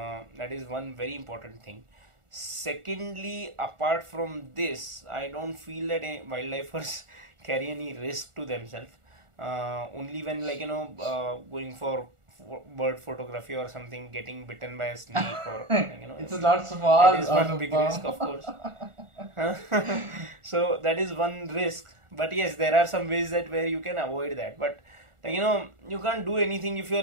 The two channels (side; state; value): left; late; 1.4 ms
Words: That is one very important thing. Secondly, apart from this, I don't feel that wildlifers carry any risk to themselves. Only when going for bird photography or something, getting bitten by a snake or it's not small. That is one big risk, of course. So that is one risk. But yes, there are some ways that where you can avoid that. But like you can't do anything if your